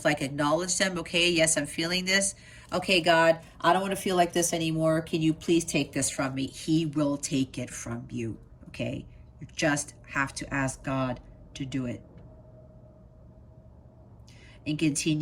like acknowledged them. Okay, yes, I'm feeling this. Okay, God, I don't want to feel like this anymore. Can you please take this from me? He will take it from you, okay? You just have to ask God to do it. And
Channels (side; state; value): both; identical; correlation 1.00